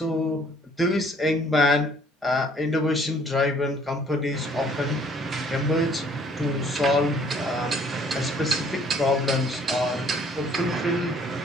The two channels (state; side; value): normal; both; correlation 0.59